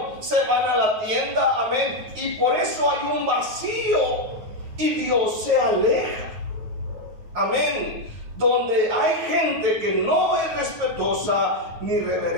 se van a la tienda, amén, y por eso hay un vacío y Dios se aleja, amén. Donde hay gente que no es respetuosa ni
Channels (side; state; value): left; late; 9.4 ms